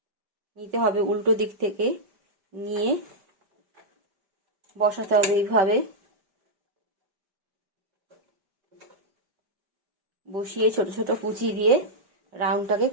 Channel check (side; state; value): left; late; 5.0 ms